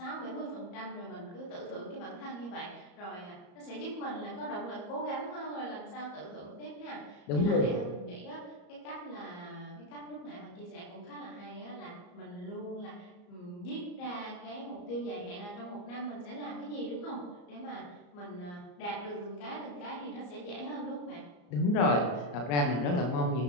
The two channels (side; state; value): right; late; 34 ms